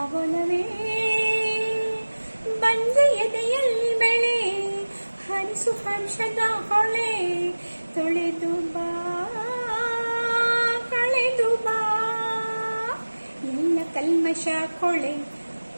ಬಾವಲವೇ ಬಂಜೆಯದೆಯಲ್ಲಿ ಬೆಳೆ ಹರಿಸು ಹರ್ಷದ ಹೊಳೆ ತೊಳೆದು ಬಾ ಕಳೆದು ಬಾ ಎಲ್ಲ ಕಲ್ಮಶ ಕೊಳೆ.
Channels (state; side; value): inverted; both; correlation -1.00